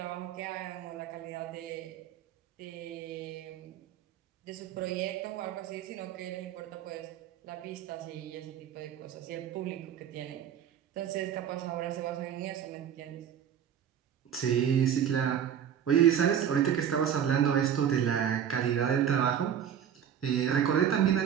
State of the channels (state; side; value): quieter; left; 9.0 dB